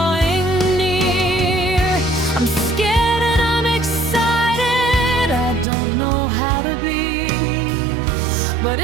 near. I'm scared and I'm excited, I don't know how to be, but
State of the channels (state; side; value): drops out; left; at 5.7 s